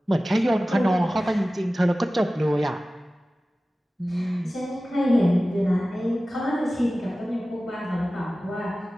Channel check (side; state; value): both; normal; correlation 0.96